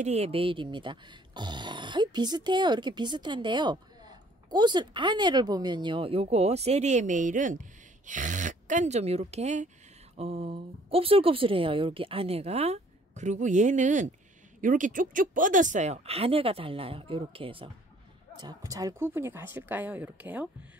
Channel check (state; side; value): normal; both; correlation 0.58